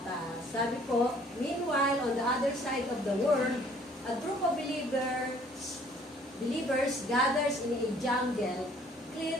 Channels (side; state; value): both; normal; correlation 0.58